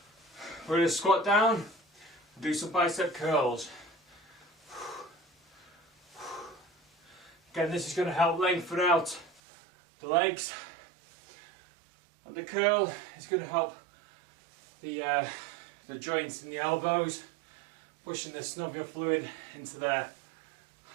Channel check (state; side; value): drops out; left; at 9.4 s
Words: We're going to squat down. Do some bicep curls. Again, this is going to help lengthen out the legs. And the curl is going to help the joints in the elbows, pushing the synovial fluid into there.